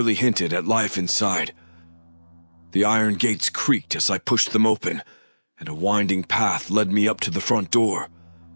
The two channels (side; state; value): both; inverted; correlation -1.00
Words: hinted at life inside. The iron gates creaked as I pushed them open, and a winding path led me up to the front door.